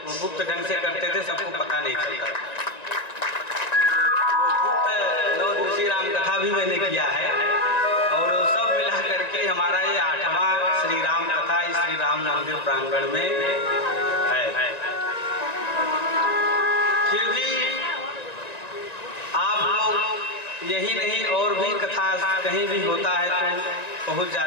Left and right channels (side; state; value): right; late; 1.9 ms